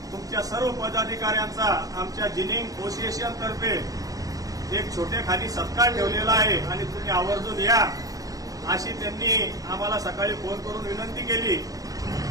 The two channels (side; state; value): left; late; 0.17 ms